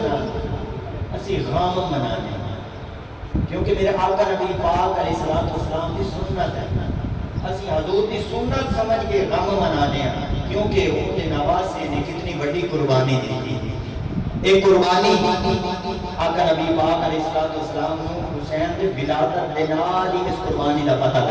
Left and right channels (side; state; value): both; identical; correlation 1.00